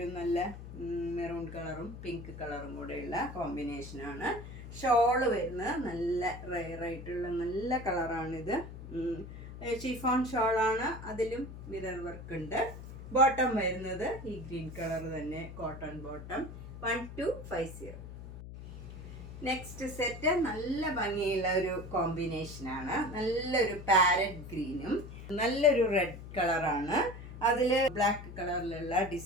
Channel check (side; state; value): left; noise; hum, 12 dB below the sound